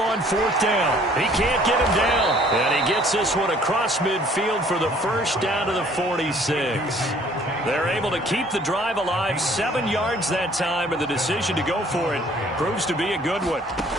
4th down. He can't get him down. And he gets this one across midfield for the 1st down to the 46. They're able to keep the drive alive. 7 yards that time, and the decision to go for it proves to be a good one.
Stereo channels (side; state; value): both; normal; correlation 0.57